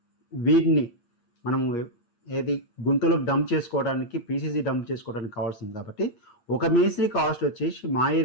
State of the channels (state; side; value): late; right; 8.5 ms